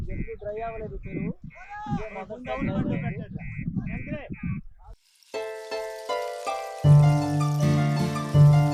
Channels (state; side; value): identical; both; correlation 1.00